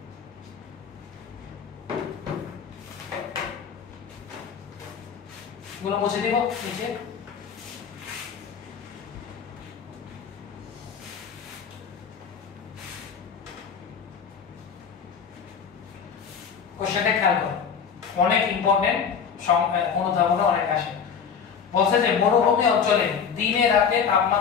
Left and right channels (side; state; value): right; quieter; 6.8 dB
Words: গুলো মুছে দিব নিচে। কোশ্চেনটা খেয়াল করো, অনেক ইম্পর্টেন্ট, অনুধাবনে অনেক আসে। বলছে যে মরুভূমি অঞ্চলে দিনে রাতে